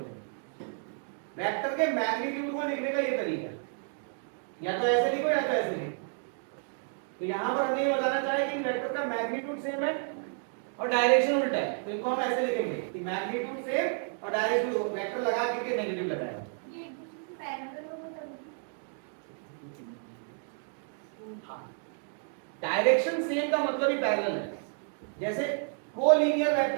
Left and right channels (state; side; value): silent; left; 56 dB below the other